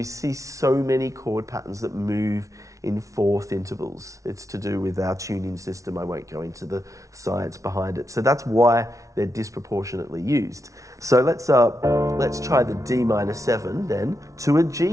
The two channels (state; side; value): late; left; 0.16 ms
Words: see so many chord patterns that move in 4th intervals. It's to do with our tuning system. I won't go into the science behind it. So that's why they're disproportionately used. So let's try the D minor 7 then to a